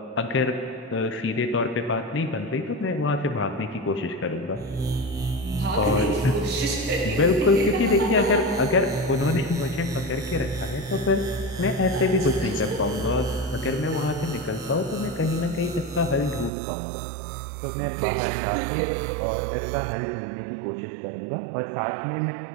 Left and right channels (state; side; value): drops out; left; at 16.5 s